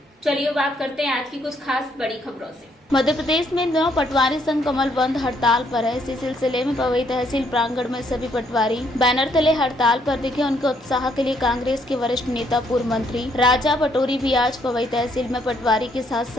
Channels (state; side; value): normal; both; correlation 0.70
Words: चलिए बात करते हैं आज की कुछ खास बड़ी खबरों से। मध्य प्रदेश में इन दिनों पटवारी संघ कमल बंद हड़ताल पर है। इसी सिलसिले में पवई तहसील प्रांगण में सभी पटवारी बैनर तले हड़ताल पर दिखे। उनके उत्साह के लिए कांग्रेस के वरिष्ठ नेता पूर्व मंत्री राजा पटोरी भी आज पवई तहसील में पटवारी के साथ